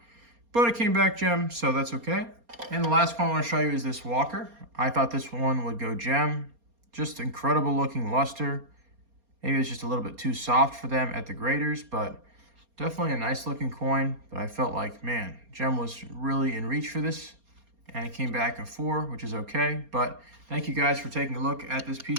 But it came back gem, so that's okay. And the last one I want to show you is this Walker. I thought this one would go gem. Just incredible looking luster. Maybe it's just a little bit too soft for them at the graders, but definitely a nice looking coin. But I felt like, man, gem was really in reach for this. And it came back a 4, which is okay. But thank you guys for taking a look at this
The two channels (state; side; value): late; left; 4.3 ms